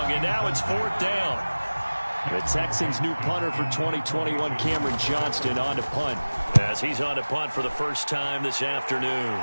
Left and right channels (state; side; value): inverted; both; correlation -1.00